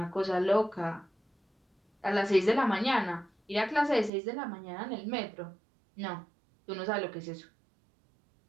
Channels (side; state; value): left; drops out; at 4.1 s